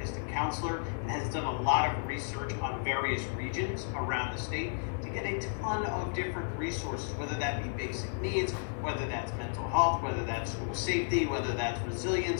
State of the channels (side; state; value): right; silent; 56 dB below the other